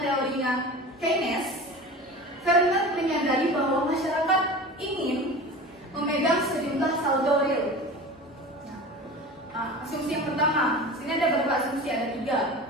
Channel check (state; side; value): normal; both; correlation 0.34